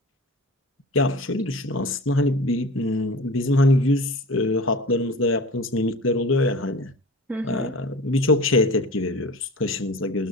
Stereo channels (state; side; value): normal; both; correlation 0.37